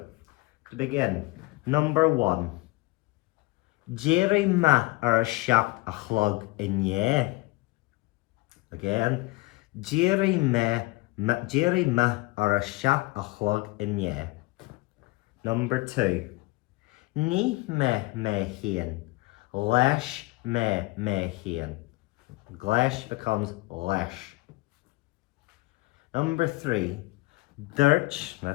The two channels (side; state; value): right; quieter; 23.2 dB